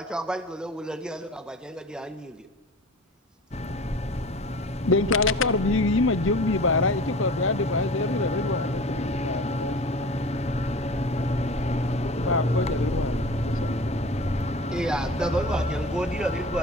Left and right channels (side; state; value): both; normal; correlation 0.39